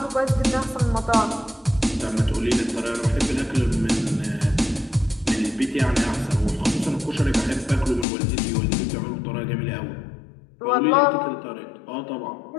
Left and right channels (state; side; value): drops out; right; at 8.1 s